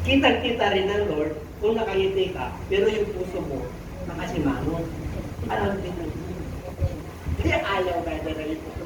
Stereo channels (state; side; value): identical; both; correlation 1.00